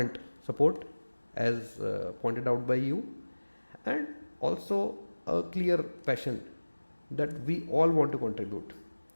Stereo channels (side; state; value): both; inverted; correlation -1.00